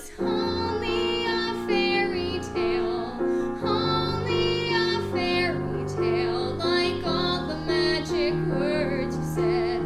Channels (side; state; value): both; identical; correlation 1.00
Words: only a fairy tale, only a fairy tale. Like all the magic words you said,